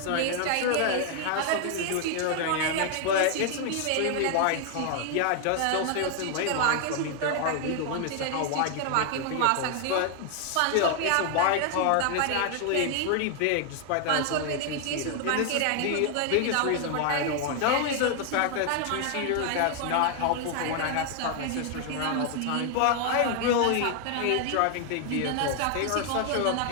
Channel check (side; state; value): both; different; correlation 0.00